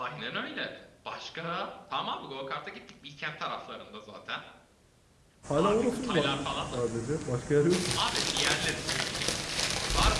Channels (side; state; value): both; identical; correlation 1.00